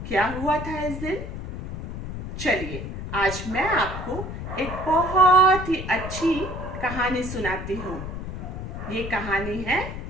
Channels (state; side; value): noise; left; rumble, 7 dB below the sound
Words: क्या हुआ था इस दिन? चलिए, आज मैं आपको एक बहुत ही अच्छी कहानी सुनाती हूँ। ये कहानी है